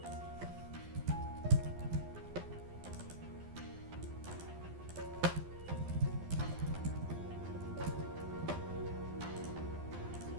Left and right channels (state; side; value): late; left; 12 ms